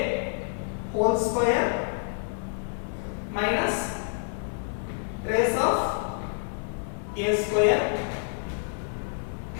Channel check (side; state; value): right; silent; 59 dB below the other